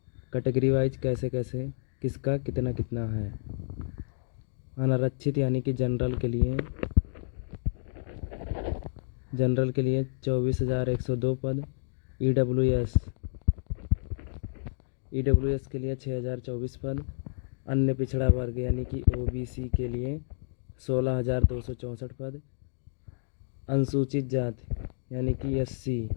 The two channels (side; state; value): right; silent; digital silence